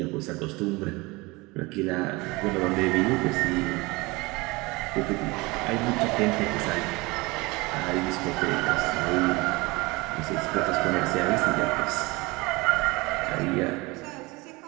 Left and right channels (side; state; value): left; quieter; 23.9 dB